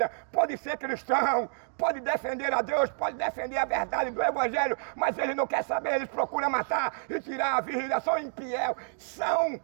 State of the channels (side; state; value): left; silent; digital silence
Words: pode ser cristão, pode defender a Deus, pode defender a verdade do Evangelho, mas ele não quer saber, eles procuram matar e tirar a vida, são infiel, são